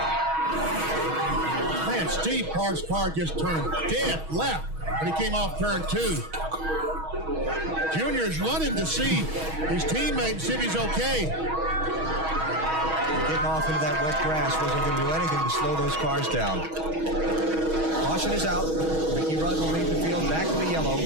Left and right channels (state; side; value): late; left; 6.3 ms